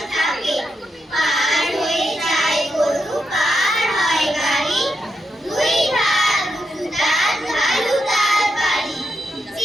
থাকে, পার হয়ে যায় গরু পার হয় গাড়ি, দুই ধার উঁচু তার ঢালু তার বাড়ি,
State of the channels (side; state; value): both; normal; correlation 0.85